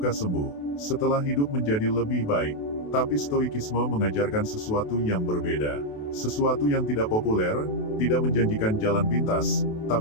sembuh. Setelah hidup menjadi lebih baik. Tapi stoikisme mengajarkan sesuatu yang berbeda. Sesuatu yang tidak populer, tidak menjanjikan jalan pintas,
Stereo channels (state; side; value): late; right; 28 ms